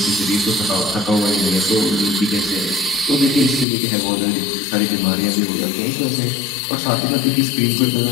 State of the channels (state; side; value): drops out; right; at 3.7 s